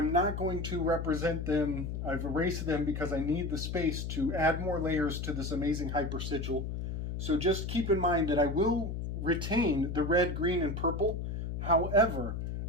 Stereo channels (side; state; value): left; noise; hum, 4 dB below the sound